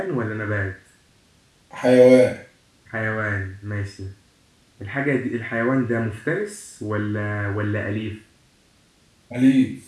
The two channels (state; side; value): identical; both; correlation 1.00